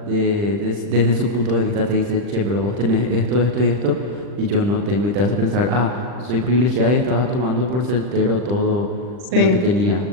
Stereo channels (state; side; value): late; left; 40 ms